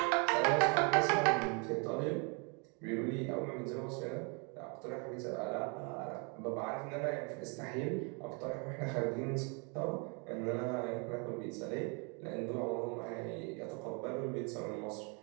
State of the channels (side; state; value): left; quieter; 34.4 dB